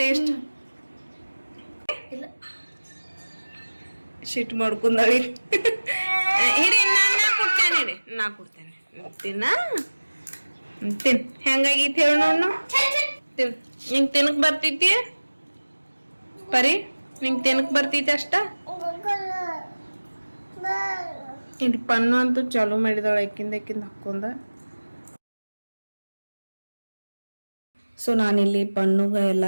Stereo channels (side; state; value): both; inverted; correlation -1.00